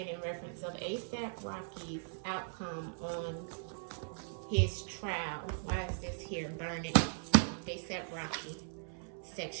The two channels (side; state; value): left; silent; 52 dB below the other